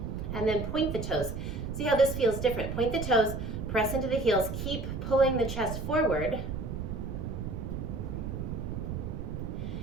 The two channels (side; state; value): right; noise; rumble, 5 dB below the sound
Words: And then point the toes. See how this feels different. Point the toes, press into the heels, keep pulling the chest forward.